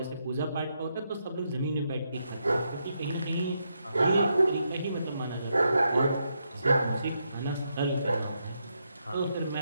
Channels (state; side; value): inverted; both; correlation -0.81